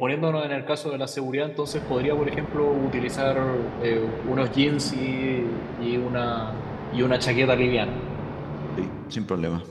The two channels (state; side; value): identical; both; correlation 1.00